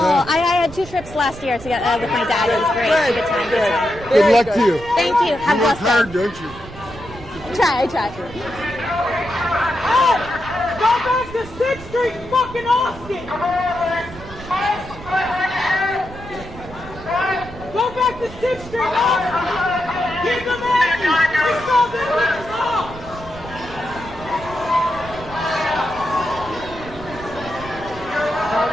had 2 trips last year to get with my dad. It was great. Good time. Good luck to you. Thank you. Have you work blessed hard, day. don't you? I try. Go back to 6th Street, fucking Austin! Go back to 6th Street, Austin! Get them at me! We saw them bitches off!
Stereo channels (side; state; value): right; noise; rumble, 15 dB below the sound